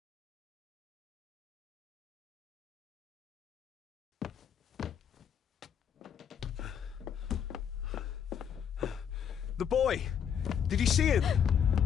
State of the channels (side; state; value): right; quieter; 8.2 dB